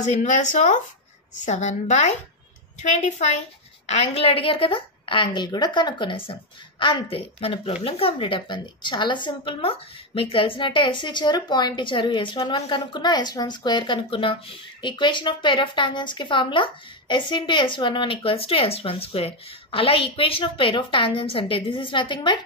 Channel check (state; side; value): normal; both; correlation 0.05